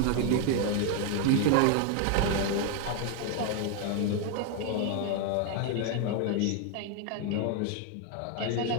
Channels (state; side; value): different; both; correlation 0.01